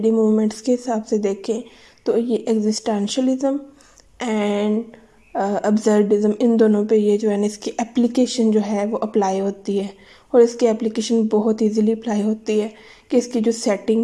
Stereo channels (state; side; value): identical; both; correlation 1.00